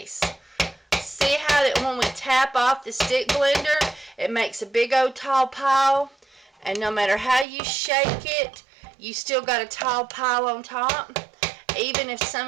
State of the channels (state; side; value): drops out; left; at 7.5 s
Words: See how that when we tap off the stick blender, it makes a big old tall pile. And no matter how you shake it, you still got a tall pile on top. Even if some